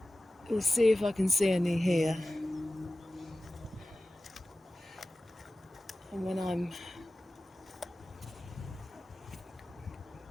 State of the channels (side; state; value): both; normal; correlation 0.96